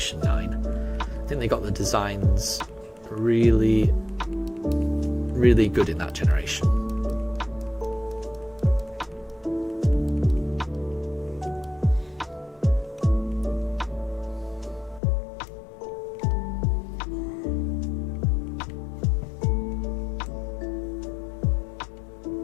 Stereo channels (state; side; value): drops out; right; at 15.0 s